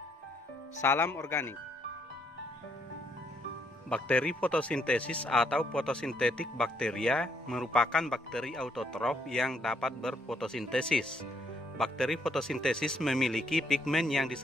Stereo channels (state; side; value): normal; both; correlation 0.72